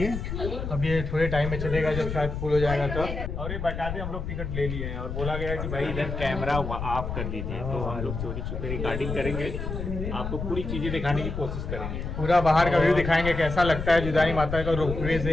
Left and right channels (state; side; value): noise; left; rumble, 5 dB below the sound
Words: अब ये थोड़े टाइम में चलेगा, जब शायद फुल हो जाएगा तो। और ये बता दें हम लोग टिकट ले लिए हैं और बोला गया कि भाई इधर कैमरा ऑफ कर दीजिए, तो हम लोग चोरी छुपे रिकॉर्डिंग करेंगे, आपको पूरी चीज़ें दिखाने की कोशिश करेंगे। पूरा बाहर का व्यू दिखाएंगे, कैसा लगता है जीवदानी माता का रोपवे